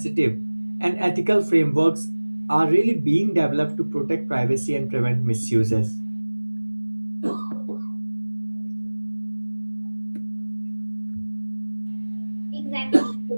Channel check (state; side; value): inverted; both; correlation -1.00